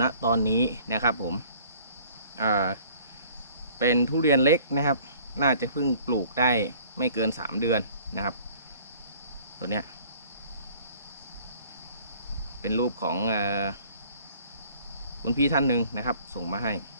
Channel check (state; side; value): inverted; both; correlation -0.53